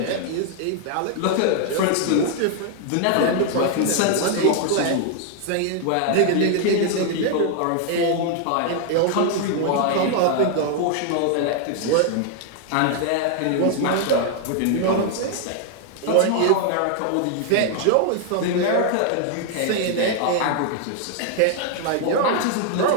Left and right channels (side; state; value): both; different; correlation 0.00